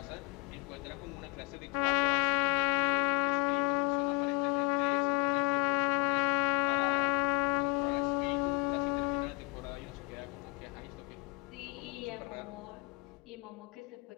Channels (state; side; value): quieter; right; 30.2 dB